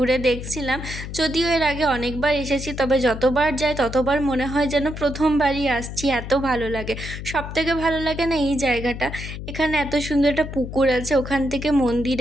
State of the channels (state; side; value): noise; left; hum, 8 dB below the sound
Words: দেখছিলাম। যদিও এর আগে অনেকবার এসেছি, তবে যতবার যাই ততবার মনে হয় যেন প্রথমবারই আসছি, এত ভালো লাগে। সবথেকে ভালো লাগে না এই জায়গাটা, এখানে এত সুন্দর একটা পুকুর আছে, ওখান থেকে